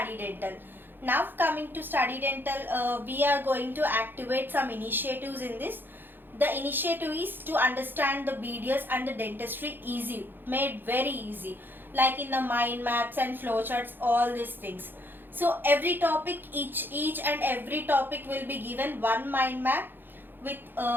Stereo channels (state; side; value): late; left; 0.096 ms